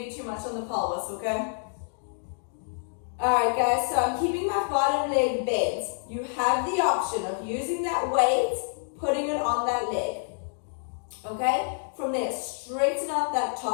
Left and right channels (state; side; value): silent; right; digital silence